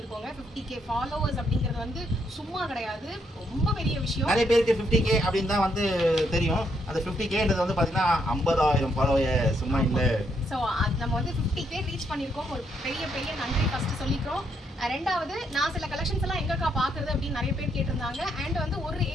50k ஃபாலோவர்ஸ் அப்படிங்கிறது வந்து சும்மா கிடையாது, ரொம்ப பெரிய விஷயம். நிறைய பேருக்கு 50k அப்படினு தான் வந்து தெரியும். அந்த 50kன்றது வந்து பாத்தீங்கன்னா 50000 ஃபாலோவர்ஸ் சும்மா இல்ல. சோ நம்ம வந்து 50k ரீச் பண்ணிருக்கோம். ஒரு பெரிய நன்றி ஃபர்ஸ்ட் சொல்லிக்கிறோம். ரெண்டாவது, நான் சில கலெக்ஷன்ஸ் எல்லாம் எங்கக்கா பாக்குறது அப்படின்னு நிறைய பேர் கேட்டிருந்தாங்க. அண்ட் வந்து ஒரு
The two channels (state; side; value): normal; both; correlation 0.75